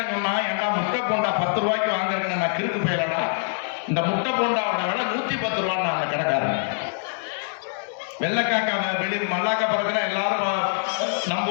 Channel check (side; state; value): right; silent; digital silence